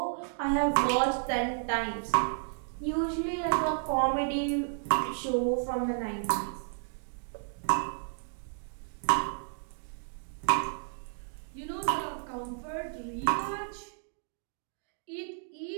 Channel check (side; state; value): left; silent; digital silence